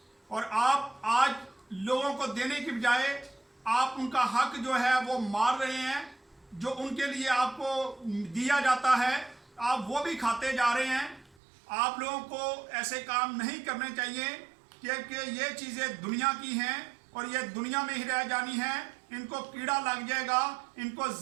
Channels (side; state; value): left; drops out; at 11.4 s